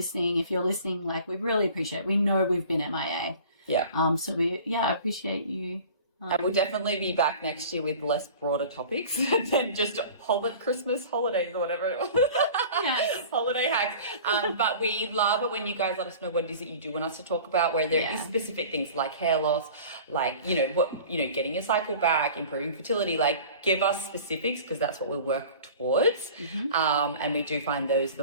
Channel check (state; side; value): inverted; both; correlation -0.42